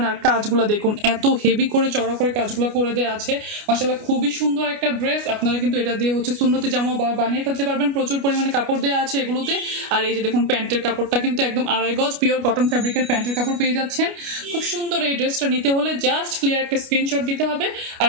আর কাজগুলো দেখুন এত হেভি করে চড়া করে কাজগুলো করে দেওয়া আছে। মাশাআল্লাহ খুবই সুন্দর একটা ড্রেস। আপনারা কিন্তু এটা দিয়ে হচ্ছে সুন্নতি জামা বানিয়ে ফেলতে পারবেন। প্রচুর পরিমাণে কাপড় দেওয়া আছে এগুলোতে। আর এই যে দেখুন প্যান্টের কাপড়টা কিন্তু একদম 2.5 গজ পিওর কটন ফ্যাব্রিকের প্যান্টের কাপড় পেয়ে যাচ্ছেন। খুব সুন্দর এই ড্রেসটা নিতে হলে জাস্ট ক্লিয়ার একটা স্ক্রিনশট দিতে হবে আর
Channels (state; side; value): late; left; 29 ms